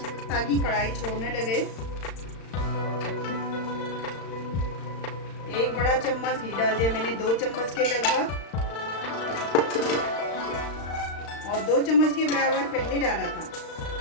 ताकि कढ़ाई छोड़ने लगे। 1 बड़ा चम्मच घी डाल दिया मैंने, 2 चम्मच के लगभग, और 2 चम्मच के बराबर पहले डाला था,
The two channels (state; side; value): late; right; 35 ms